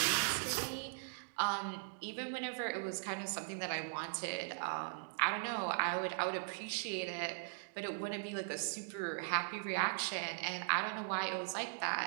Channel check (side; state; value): left; silent; digital silence